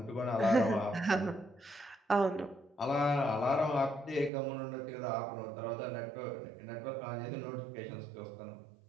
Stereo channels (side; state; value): left; drops out; at 4.3 s